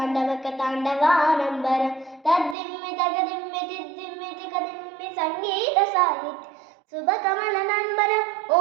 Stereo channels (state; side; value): drops out; left; at 2.6 s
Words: तद्दिम्मि तगदिम्मि तिद्दिम्मि तिकदिम्मि सङ्गीतसाहित्य शुभकमलनम्बर